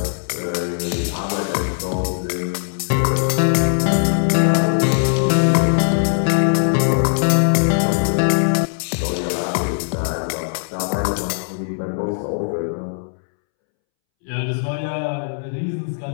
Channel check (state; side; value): silent; right; 66 dB below the other